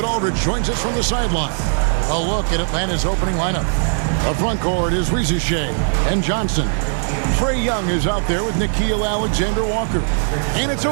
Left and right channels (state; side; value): silent; left; 67 dB below the other